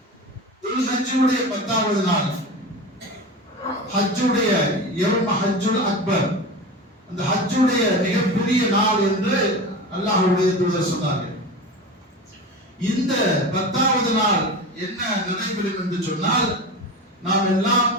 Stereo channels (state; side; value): normal; both; correlation 0.28